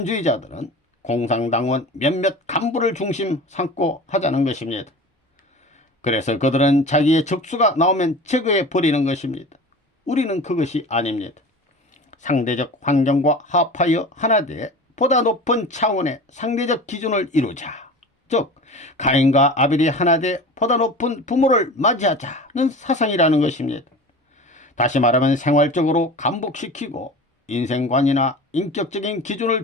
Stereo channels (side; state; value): both; normal; correlation 0.36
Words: 공산당원 몇몇 간부를 중심 삼고 하자는 것입니다. 그래서 그들은 자기의 적수가 나오면 제거해 버리는 것입니다. 우리는 그것이 아닙니다. 상대적 환경과 합하여 하나되 보다 높은 차원의 상대적 기준을 이루자. 즉 가인과 아벨이 하나되 보다 높은 부모를 맞이하자는 사상이라는 것입니다. 다시 말하면 생활적으로 감복시키고 인생관이나 인격적인 기준을